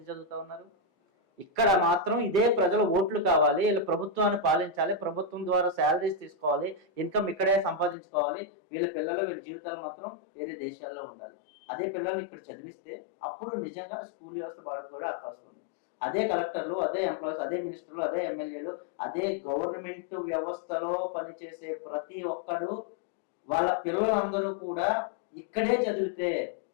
చదువుతా ఉన్నారు? ఇక్కడ మాత్రం ఇదే ప్రజల ఓట్లు కావాలి, వీళ్ళ ప్రభుత్వాన్ని పాలించాలి, ప్రభుత్వం ద్వారా శాలరీస్ తీసుకోవాలి, ఇన్కమ్ ఇక్కడే సంపాదించుకోవాలి, వీళ్ళ పిల్లలు వీళ్ళ జీవితాలు మాత్రం వేరే దేశాల్లో ఉండాలి. అదే పిల్లల్ని ఇక్కడ చదివిస్తే అప్పుడు నిజంగా స్కూల్ వ్యవస్థ బాగుపడే అవకాశం ఉంది. అదే కలెక్టర్లు, అదే ఎంప్లాయీస్, అదే మినిస్టర్లు, అదే ఎమ్మెల్యేలు, అదే గవర్నమెంట్ వ్యవస్థలో పనిచేసే ప్రతి ఒక్కడు వాళ్ళ పిల్లలందరూ కూడా ఇక్కడే చదివితే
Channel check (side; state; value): right; drops out; at 8.0 s